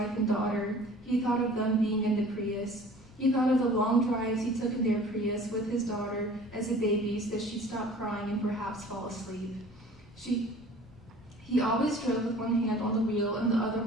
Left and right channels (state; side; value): normal; both; correlation 0.47